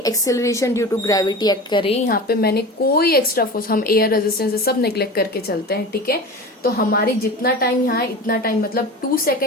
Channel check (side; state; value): both; normal; correlation 0.32